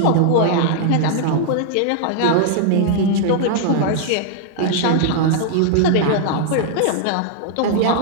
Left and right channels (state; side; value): different; both; correlation -0.01